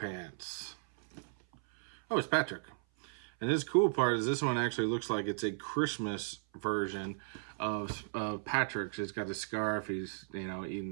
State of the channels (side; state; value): left; silent; 54 dB below the other